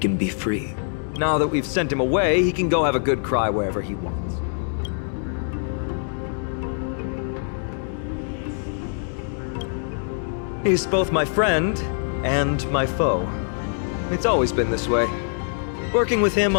be free. Now that we've sent him away, he can go have a good cry wherever he wants. He's both my friend and my foe. It's always been this way. Working with him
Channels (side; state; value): right; silent; 63 dB below the other